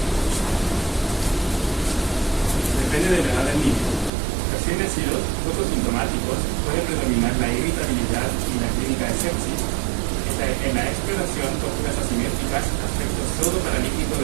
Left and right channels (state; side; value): drops out; left; at 4.1 s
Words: Depende de la edad del niño. Recién nacidos, poco sintomáticos, puede predominar la irritabilidad y la clínica de sepsis. En la exploración, posturas asimétricas, aspecto pseudoparalítico